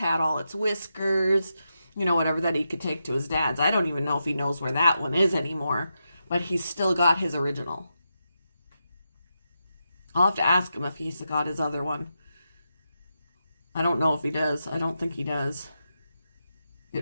all its whiskers, whatever that he could take to his dad's. I don't even know if he knows where that one is anymore, but he's still got his original. I'll have to ask him if he's got his other one. I don't know if he does. I don't think he does.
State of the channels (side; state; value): both; inverted; correlation -0.87